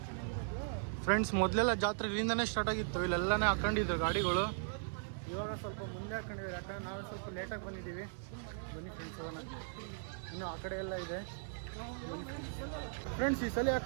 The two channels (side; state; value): left; silent; 52 dB below the other